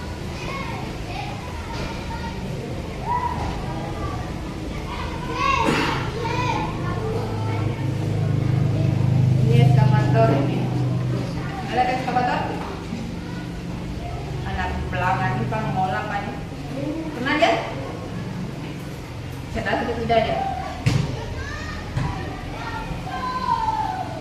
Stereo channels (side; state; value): both; identical; correlation 1.00